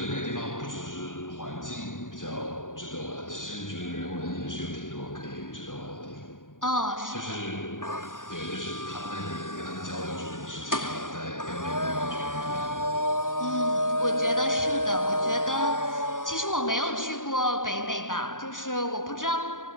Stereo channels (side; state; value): right; late; 0.88 ms